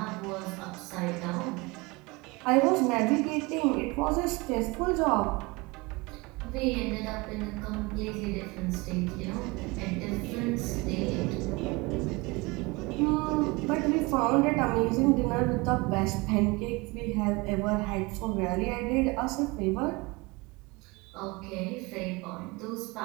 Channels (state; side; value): quieter; left; 25.4 dB